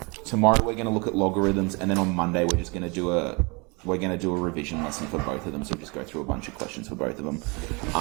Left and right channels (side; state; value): left; quieter; 29.5 dB